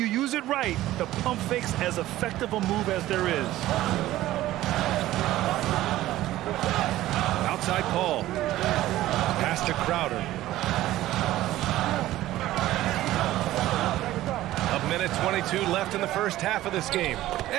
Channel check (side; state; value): left; quieter; 15.2 dB